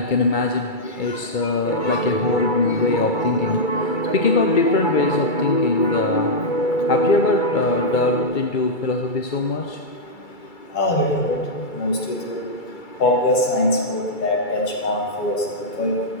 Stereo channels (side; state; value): right; late; 2.3 ms